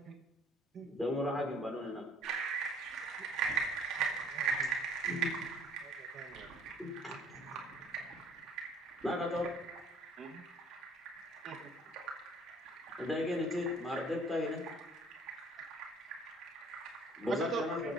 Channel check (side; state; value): both; normal; correlation 0.55